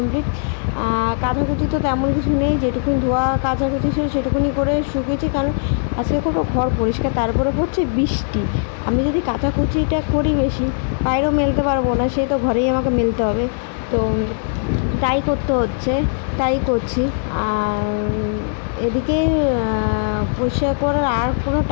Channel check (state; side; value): silent; right; digital silence